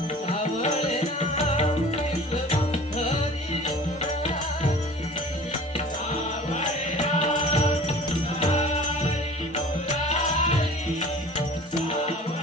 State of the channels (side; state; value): both; normal; correlation 0.44